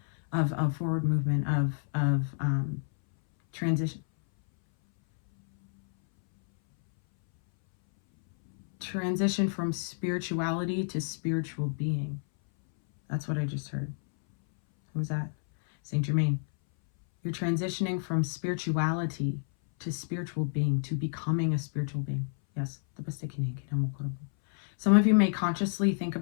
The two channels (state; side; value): silent; right; 58 dB below the other